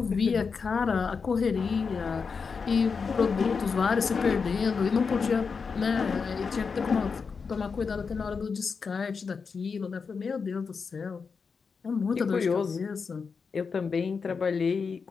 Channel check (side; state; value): right; quieter; 5.3 dB